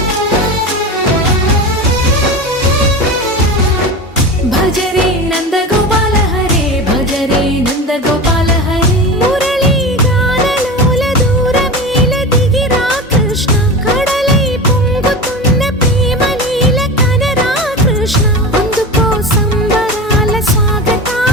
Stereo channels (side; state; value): both; normal; correlation 0.27